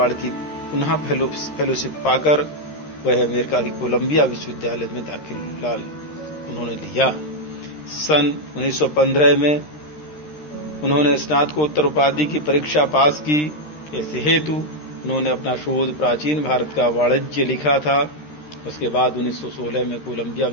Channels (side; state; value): right; late; 13 ms